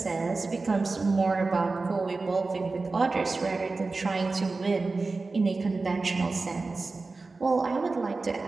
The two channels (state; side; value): quieter; left; 3.7 dB